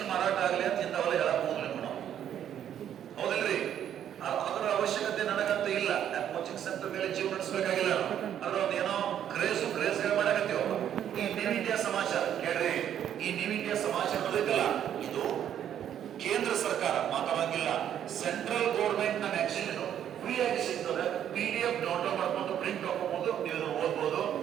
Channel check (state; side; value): quieter; left; 10.0 dB